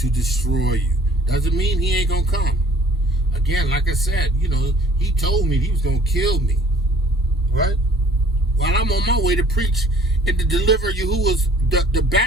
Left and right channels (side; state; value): both; normal; correlation 0.55